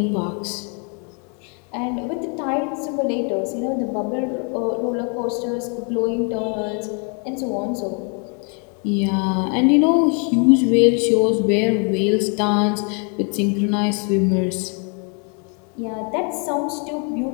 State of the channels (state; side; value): quieter; right; 37.8 dB